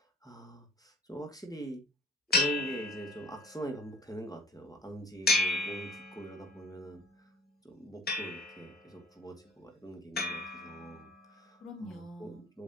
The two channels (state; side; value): normal; both; correlation 0.52